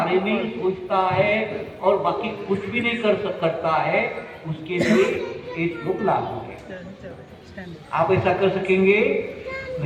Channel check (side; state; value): both; identical; correlation 1.00